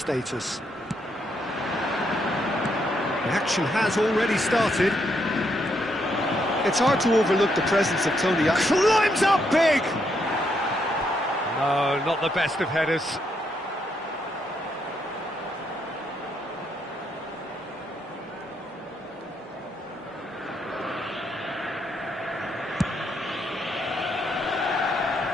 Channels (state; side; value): normal; both; correlation 0.77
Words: The action has already started. It's hard to overlook the presence of Tony. Climbs up big! No, not the best of headers.